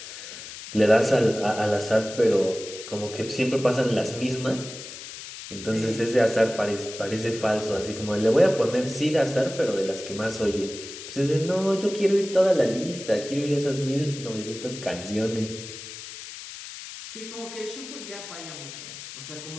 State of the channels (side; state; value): left; noise; hiss, 12 dB below the sound